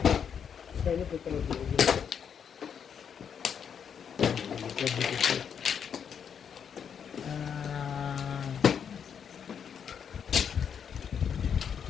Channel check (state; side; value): quieter; right; 7.6 dB